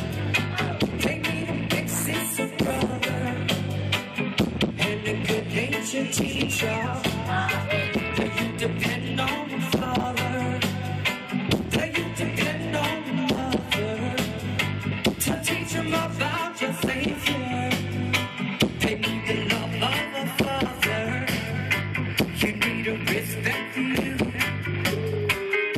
They need a big sister, brother, and a good natured teacher. The youth depend on the father. The youth depend on the mother to teach them about your Savior. They need the love of a father. You need a respect for you.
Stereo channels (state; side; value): identical; both; correlation 1.00